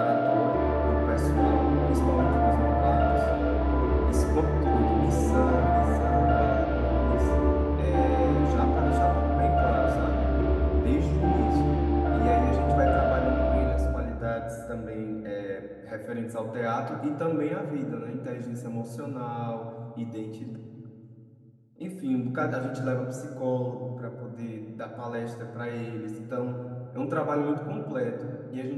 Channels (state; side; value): identical; both; correlation 1.00